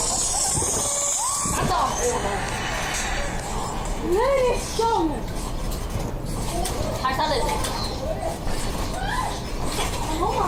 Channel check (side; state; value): both; identical; correlation 1.00